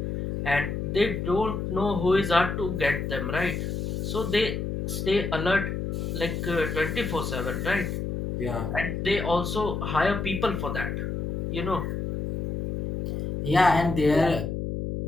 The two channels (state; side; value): noise; left; hum, 3 dB below the sound